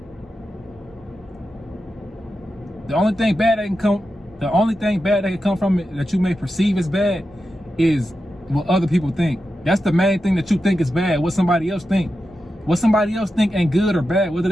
The only thing bad that can come from it that you may perceive as bad is what other people think. That's the main thing that you think is bad. What somebody else think. What somebody else think ain't good or bad, whether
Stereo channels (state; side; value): normal; both; correlation 0.90